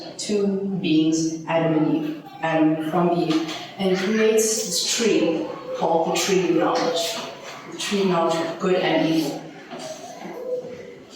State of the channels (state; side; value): identical; both; correlation 1.00